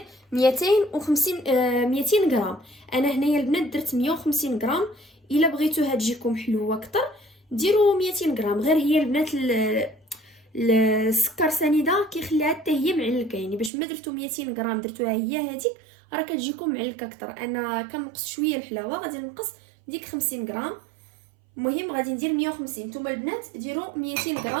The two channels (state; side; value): drops out; left; at 13.7 s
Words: 200 غرام. انا هنايا البنات درت 150 غرام. الا بغيتوها تجيكم حلوه اكثر ديروا 200 غرام. غير هي البنات السكر سنيده كيخليها حتى هي معلكه، يعني باش ما درتو 200 غرام درتوها هي هذيك راه كتجيكم معلكه اكثر. انا كنقص شويه الحلاوه، غادي نقص ديك 50 غرام. المهم غادي ندير 150. نتوما البنات ديروا 200